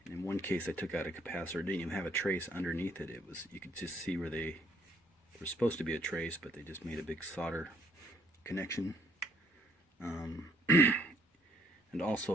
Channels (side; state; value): both; normal; correlation 0.65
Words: In one case I took out a capacitor, it didn't even have a trace underneath it. You could just see where they were supposed to be a trace, but they just made a big solder connection. And